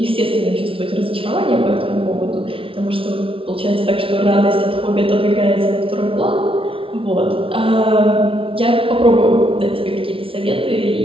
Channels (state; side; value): late; left; 0.26 ms